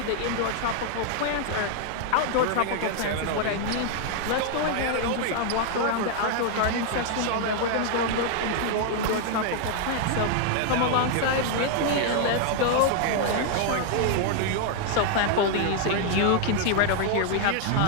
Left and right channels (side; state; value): both; different; correlation 0.00